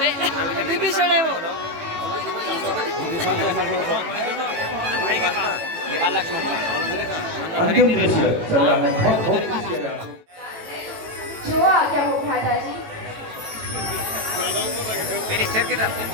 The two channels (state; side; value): late; left; 18 ms